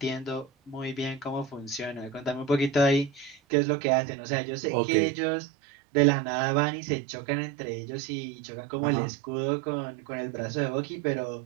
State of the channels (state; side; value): drops out; left; at 3.4 s